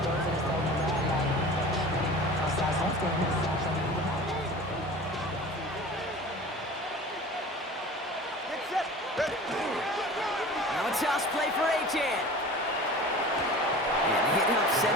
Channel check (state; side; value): normal; both; correlation 0.39